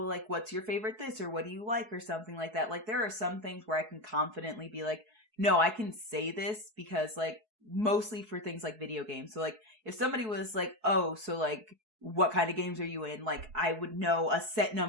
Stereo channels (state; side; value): late; left; 4.7 ms